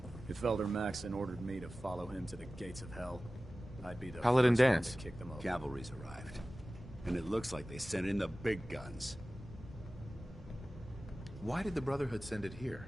If Elder Maxon ordered me to follow him to the gates of hell, I'd be the Paladin first one Danse. to kick them over. Cavalry's arrived. And it looks like they sent in the big guns. Why did the Brotherhood send it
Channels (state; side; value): normal; both; correlation 0.96